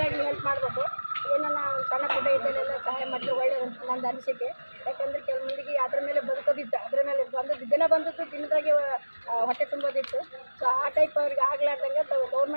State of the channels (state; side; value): inverted; both; correlation -1.00